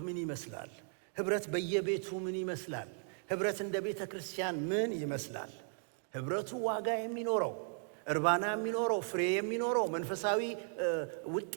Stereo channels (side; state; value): left; silent; 53 dB below the other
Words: ምን ይመስላል? ህብረት በየቤቱ ምን ይመስላል? ህብረት እንደ ቤተ ክርስቲያን ምን ይመስላል? ህብረቱ ዋጋ የሚኖረው፣ እርባና የሚኖረው፣ ፍሬ የሚኖረው፣ መንፈሳዊ